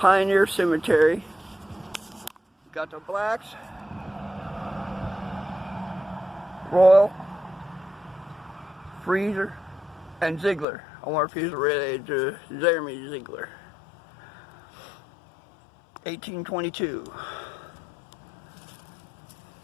Cemetery. Got the Blacks, Royal, Freezer, and Ziegler. I wonder if he's related to Jeremy Ziegler. 1822.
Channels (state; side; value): drops out; right; at 10.7 s